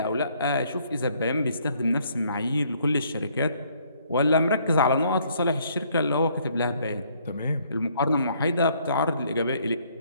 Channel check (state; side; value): inverted; both; correlation -0.65